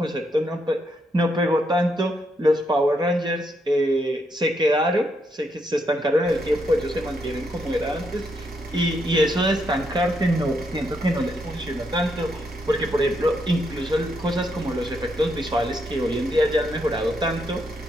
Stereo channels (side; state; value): both; normal; correlation 0.78